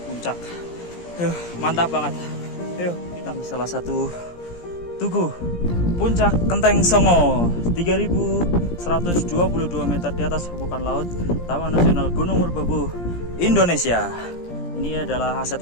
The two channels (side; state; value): right; late; 17 ms